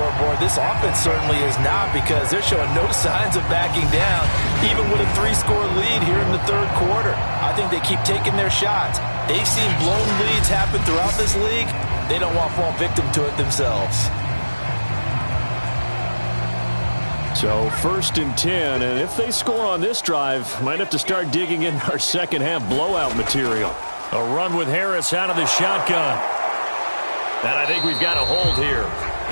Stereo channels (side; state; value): both; inverted; correlation -1.00